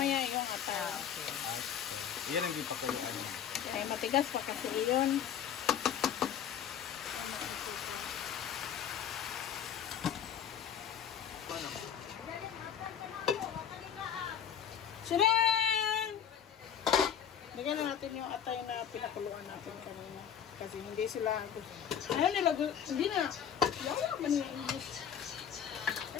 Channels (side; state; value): right; quieter; 8.7 dB